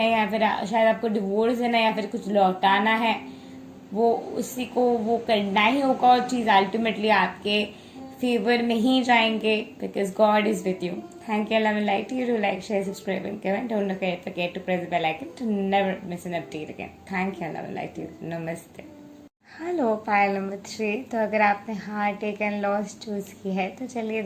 या फिर शायद आपको डिवोर्स देना या फिर कुछ लौटाना है, वो उसी को वो करना ही होगा, और चीज़ अल्टीमेटली आपके फेवर में ही जाएंगे, because God is with you. Thank you, love and light you, do like, share, subscribe and comment, don't forget to press the bell icon to never miss an update again. Thank you, love and light you, नमस्ते। Hello, pile number 3। तो अगर आपने heart take and loss choose की है, तो चलिए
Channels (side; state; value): both; identical; correlation 1.00